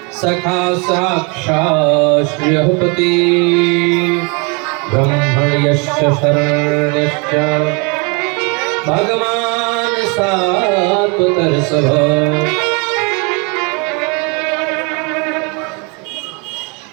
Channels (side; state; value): left; quieter; 32.0 dB